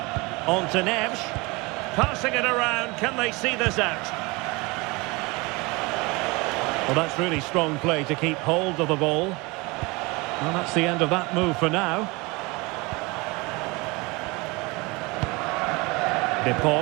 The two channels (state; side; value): quieter; left; 25.2 dB